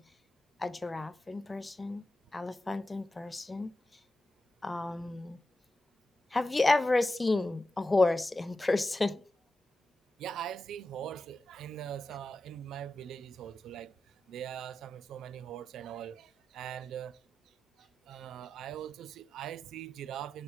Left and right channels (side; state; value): both; normal; correlation 0.92